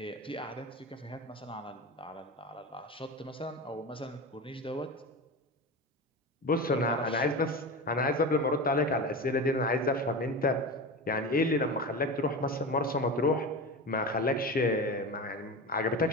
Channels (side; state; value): both; normal; correlation 0.26